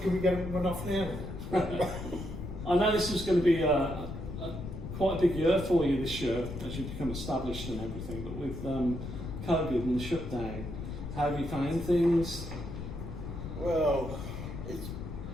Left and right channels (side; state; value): left; noise; rumble, 8 dB below the sound